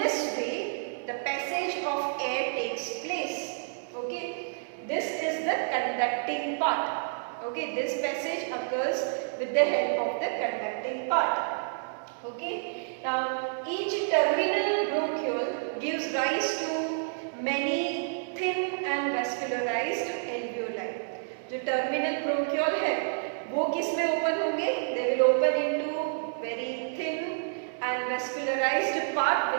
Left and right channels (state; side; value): silent; left; digital silence